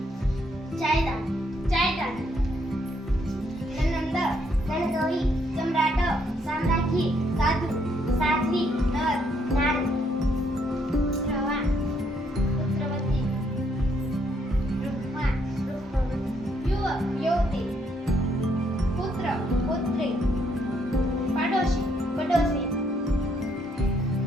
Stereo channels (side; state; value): both; normal; correlation 0.72